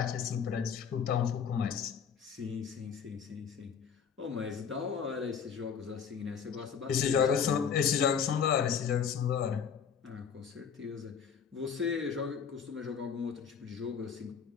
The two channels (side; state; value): right; quieter; 7.1 dB